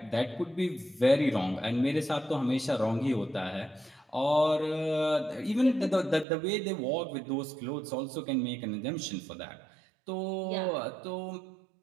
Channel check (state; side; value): drops out; left; at 6.2 s